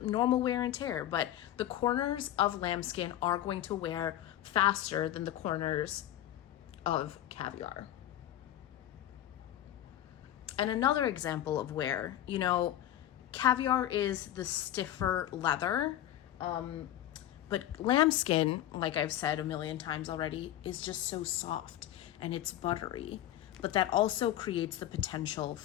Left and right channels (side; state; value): right; quieter; 12.5 dB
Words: normal wear and tear. But the corners of lambskin are going to wear faster than the corners of caviar. And another example of wear, caviar is the stiffer leather, but lambskin, like I've said a million times already, is just so soft and it's buttery, but that also creates the potential